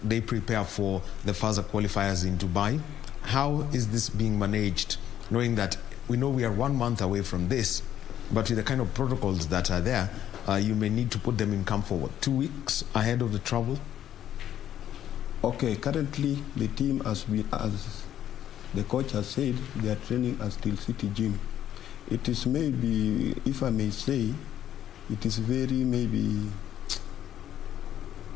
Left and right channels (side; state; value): right; quieter; 11.1 dB